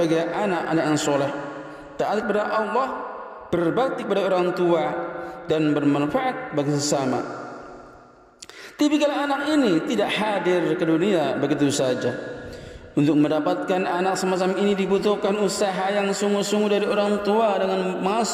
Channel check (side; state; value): both; identical; correlation 1.00